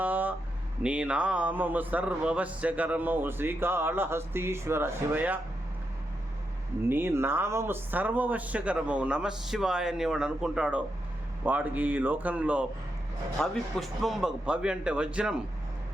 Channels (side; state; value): both; normal; correlation 0.84